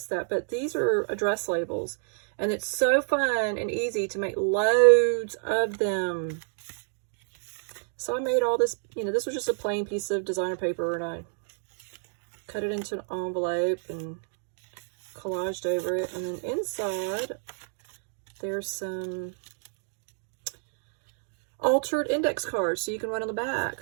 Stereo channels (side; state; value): left; silent; digital silence